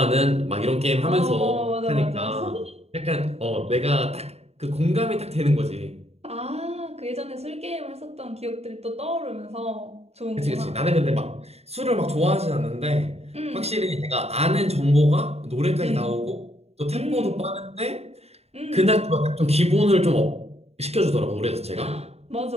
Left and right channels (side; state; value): left; late; 0.30 ms